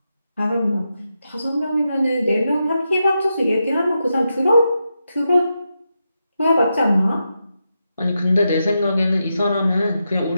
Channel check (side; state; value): both; inverted; correlation -0.86